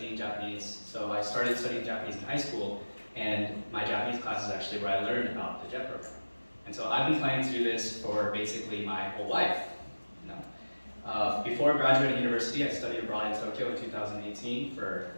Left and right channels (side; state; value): both; inverted; correlation -1.00